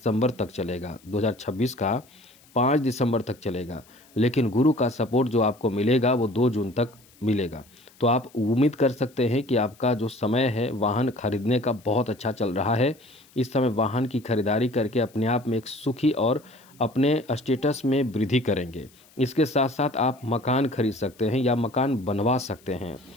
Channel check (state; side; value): noise; left; hiss, 28 dB below the sound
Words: तक चलेगा, 2026 का 5 दिसंबर तक चलेगा, लेकिन गुरु का सपोर्ट जो आपको मिलेगा वो 2 जून तक मिलेगा। तो आप उम्मीद कर सकते हैं कि आपका जो समय है वाहन खरीदने का बहुत अच्छा चल रहा है। इस समय वाहन की खरीदारी करके अपने आप में एक सुखी और अपने स्टेटस में वृद्धि करेंगे। इसके साथ साथ आप मकान खरीद सकते हैं या मकान बनवा सकते हैं।